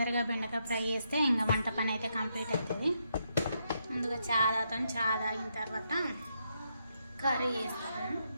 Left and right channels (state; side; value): inverted; both; correlation -0.79